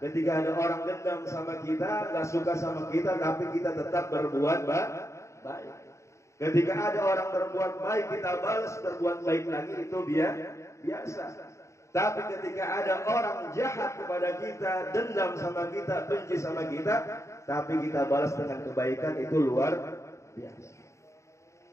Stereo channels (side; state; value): right; late; 0.14 ms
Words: ada orang dendam sama kita, nggak suka sama kita, tapi kita tetap berbuat baik. Ketika ada orang berbuat baik, kita balas berbuat baik lagi, itu biasa. Tapi ketika ada orang jahat kepada kita, dendam sama kita, benci sama kita, tapi kita balas dengan kebaikan, itu luar biasa.